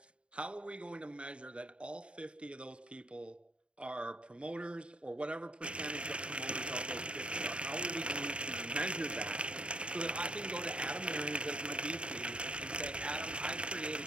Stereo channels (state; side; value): late; left; 0.056 ms